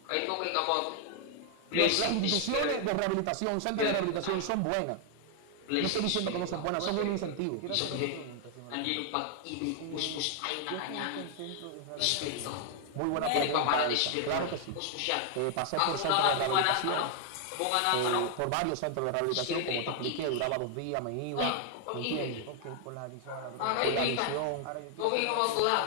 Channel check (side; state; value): both; different; correlation 0.00